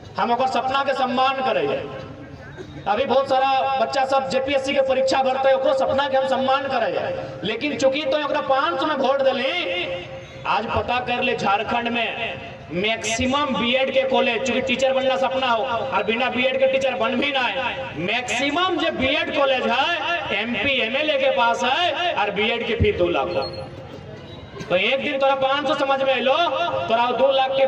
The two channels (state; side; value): identical; both; correlation 1.00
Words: हम अगर सपना के सम्मान करेंगे अभी बहुत सारा बच्चा सब जेपीएससी के परीक्षा भरते है ओकरो सपना के हम सम्मान करेंगे लेकिन चूंकि तो 500 में वोट दिली आज पता कर ले झारखंड में मैक्सिमम बीएड के कॉलेज चूंकि टीचर बनना सपना हो और बिना बीएड के टीचर बन भी ना है मैक्सिमम जो बीएड कॉलेज है एमपी एमएलए के पास है और बीएड की फीस 2 लाख हो। तो एक दिन तोरा 500 समझ में लो तोरा 2 लाख के